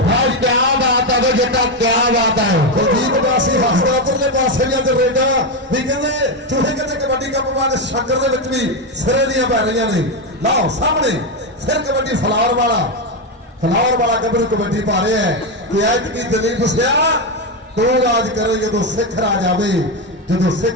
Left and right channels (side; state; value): both; normal; correlation 0.09